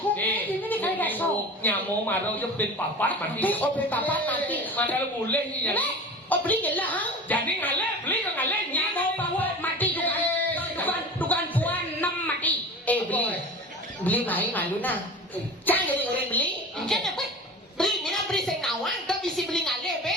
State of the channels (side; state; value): both; normal; correlation 0.35